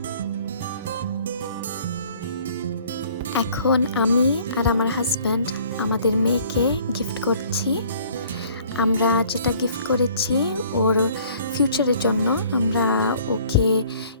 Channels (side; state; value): both; inverted; correlation -0.56